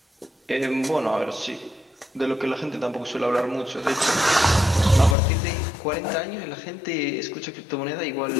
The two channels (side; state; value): right; drops out; at 5.2 s